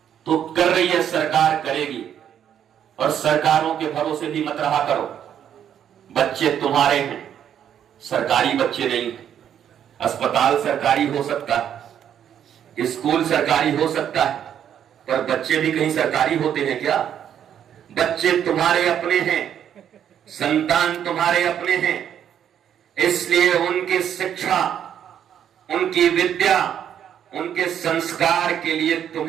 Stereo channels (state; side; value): quieter; left; 9.4 dB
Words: तो कर रही है सरकार, करेगी, और सरकारों के भरोसे भी मत रहा करो। बच्चे तुम्हारे हैं, सरकारी बच्चे नहीं हैं। अस्पताल सरकारी हो सकता है, स्कूल सरकारी हो सकता है, पर बच्चे भी कहीं सरकारी होते हैं क्या? बच्चे तुम्हारे अपने हैं, संतान तुम्हारे अपने हैं, इसलिए उनकी शिक्षा, उनकी विद्या, उनके संस्कार के लिए